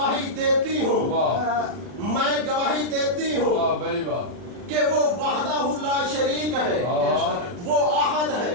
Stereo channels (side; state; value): left; late; 40 ms